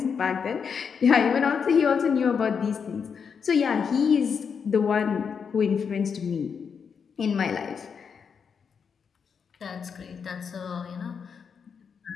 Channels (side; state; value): right; quieter; 6.4 dB